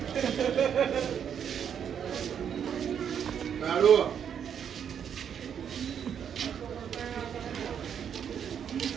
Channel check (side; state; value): left; quieter; 8.2 dB